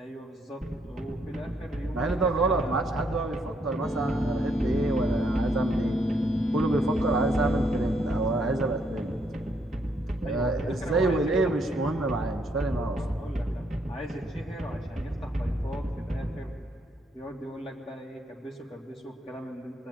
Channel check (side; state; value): both; normal; correlation 0.73